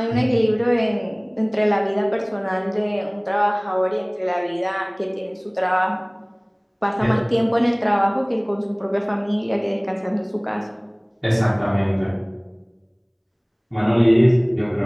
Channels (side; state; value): both; identical; correlation 1.00